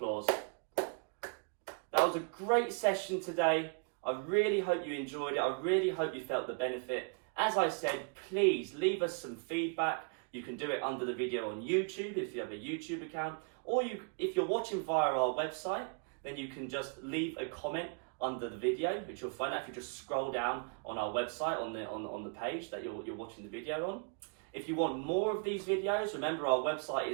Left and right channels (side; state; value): left; quieter; 39.3 dB